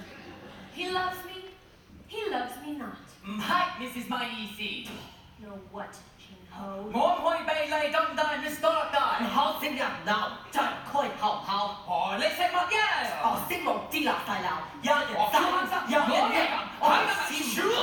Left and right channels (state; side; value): identical; both; correlation 1.00